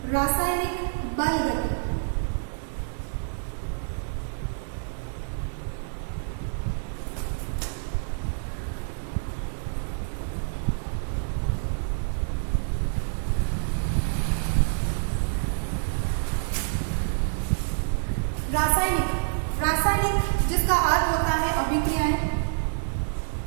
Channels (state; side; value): silent; left; digital silence